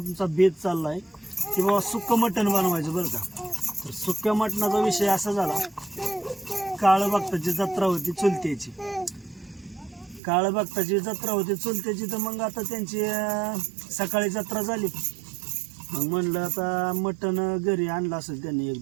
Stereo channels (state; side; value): drops out; left; at 10.2 s